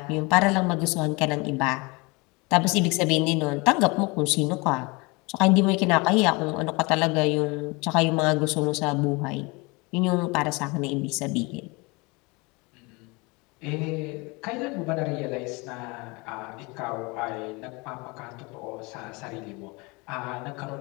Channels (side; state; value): right; quieter; 26.7 dB